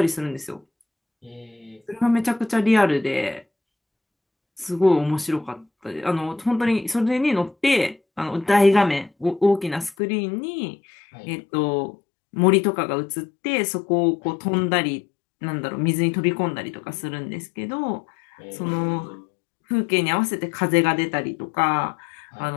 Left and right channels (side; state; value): right; drops out; at 10.0 s